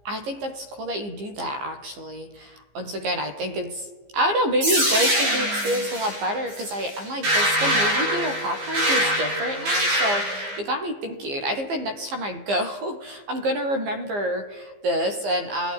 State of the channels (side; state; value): left; late; 15 ms